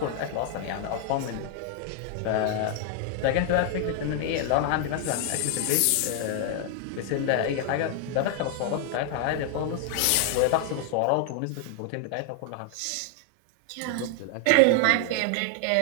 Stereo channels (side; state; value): both; different; correlation 0.00